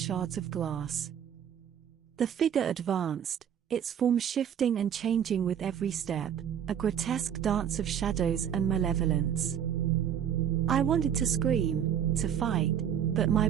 of glass. The figure advanced, its form shifting and changing with every step, a grotesque dance of shadows and malevolence. I wanted to scream, to fight, but my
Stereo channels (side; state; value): left; quieter; 9.1 dB